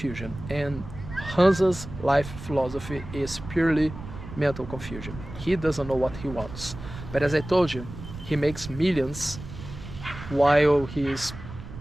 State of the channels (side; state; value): right; noise; rumble, 12 dB below the sound